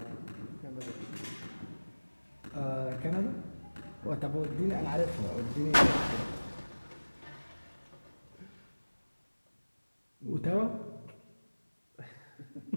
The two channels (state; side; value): inverted; both; correlation -1.00